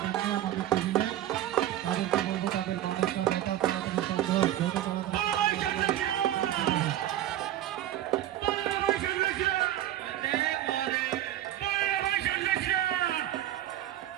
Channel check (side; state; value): left; quieter; 12.8 dB